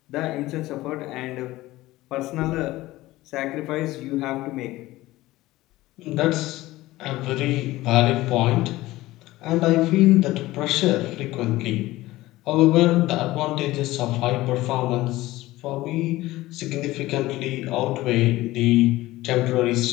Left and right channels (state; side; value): quieter; right; 17.7 dB